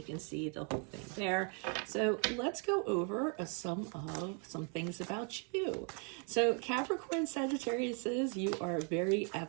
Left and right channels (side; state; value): left; quieter; 38.5 dB